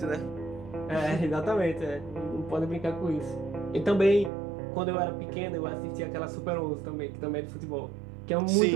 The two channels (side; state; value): left; drops out; at 4.3 s